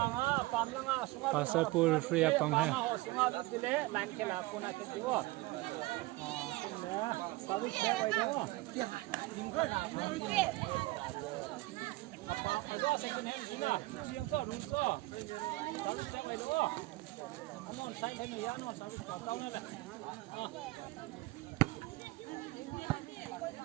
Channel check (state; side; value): quieter; left; 20.5 dB